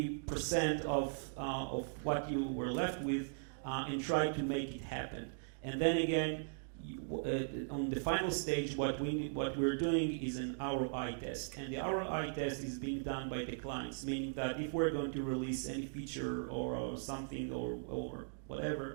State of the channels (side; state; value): left; silent; digital silence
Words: of what you were left with and try to make it happen. And then again, on the final stage, what we're doing is an ROI test, and the ROI test is being done by the clients, meaning that if we're going to release any feature or something or